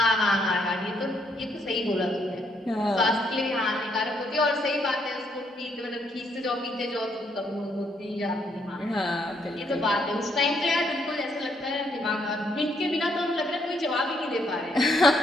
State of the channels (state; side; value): normal; both; correlation 0.72